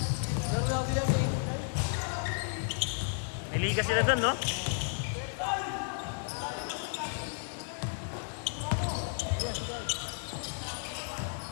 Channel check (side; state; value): right; silent; digital silence